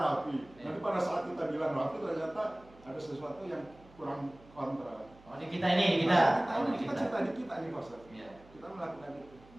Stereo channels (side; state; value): right; noise; hum, 24 dB below the sound